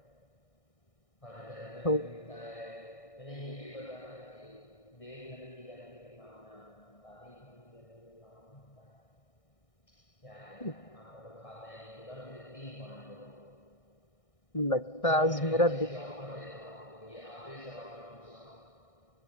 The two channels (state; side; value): late; right; 1.6 ms